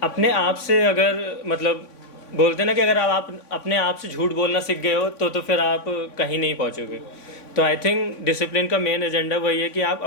अपने आप से अगर मतलब बोलते हैं ना कि अगर आप अपने आप से झूठ बोलना सीख गए हो तो फिर आप कहीं नहीं पहुंचोगे। तो आई थिंक डिसिप्लिन का मेन एजेंडा वही है कि आप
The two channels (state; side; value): late; right; 3.5 ms